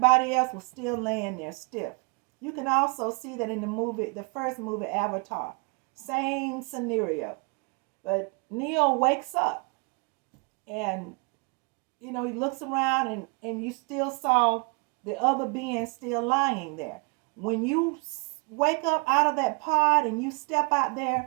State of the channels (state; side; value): quieter; left; 30.7 dB